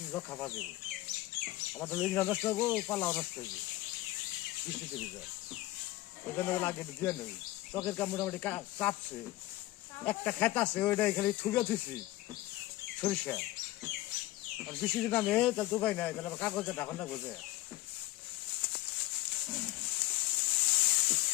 রক্ষা পাওয়া যাবে। আমার তো লিঙ্গা নষ্ট হবো, পাল্লাও নষ্ট হইবে বৃষ্টিতে ভিজা, ওই জন্য লাগে দিয়ে নই। চকের কাম মোটামুটি কাটছে, একটা খেত আছে ওইটাই খালি ঠুকে দিছি সরিষা, আর বৃষ্টি যদি নামে তাহলে তো উপায় নাই, তাহলে আবার কাগজে ঢাকনটা বোঝে।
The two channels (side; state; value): right; quieter; 17.1 dB